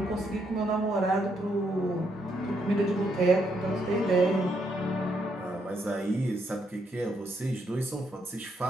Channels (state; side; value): normal; both; correlation 0.75